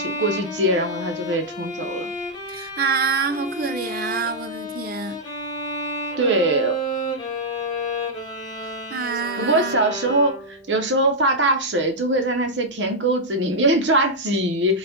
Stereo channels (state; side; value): normal; both; correlation -0.04